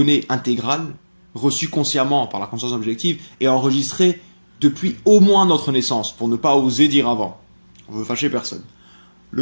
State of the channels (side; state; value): both; inverted; correlation -1.00